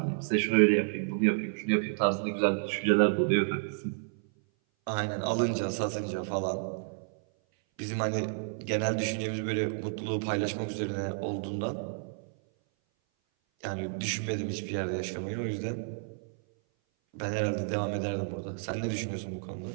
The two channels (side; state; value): left; silent; 57 dB below the other